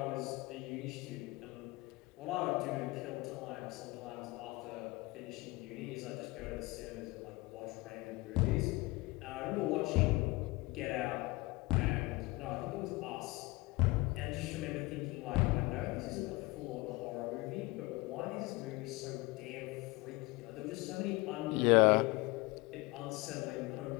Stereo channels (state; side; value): quieter; right; 23.0 dB